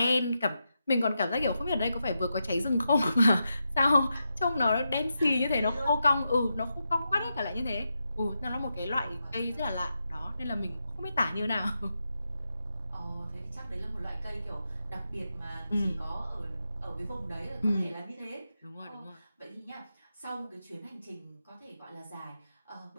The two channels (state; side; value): inverted; both; correlation -0.87